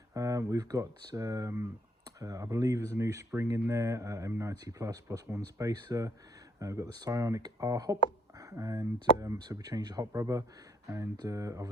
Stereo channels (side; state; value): both; normal; correlation 0.70